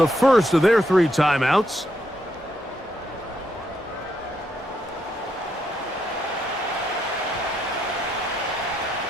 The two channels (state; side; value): normal; both; correlation 0.78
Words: first of their 3 timeouts.